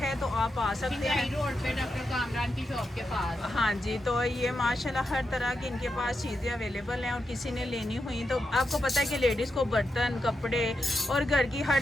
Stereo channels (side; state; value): both; normal; correlation 0.86